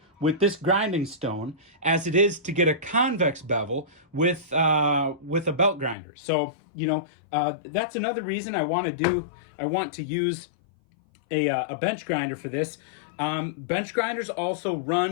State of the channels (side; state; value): right; drops out; at 6.0 s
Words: with this grinding stone as it is to get a convex bevel with a belt grinder. So you know that's another reason I want to use a bench grinder for this. Bench grinders also